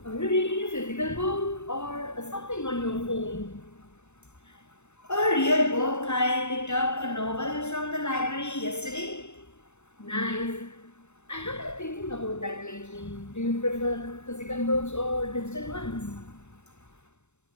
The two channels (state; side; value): late; right; 0.82 ms